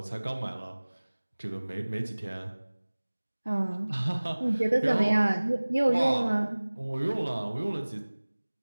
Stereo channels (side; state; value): both; inverted; correlation -1.00